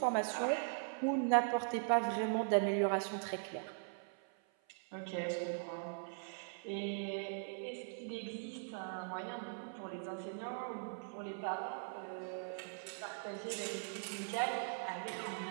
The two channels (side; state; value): left; silent; 51 dB below the other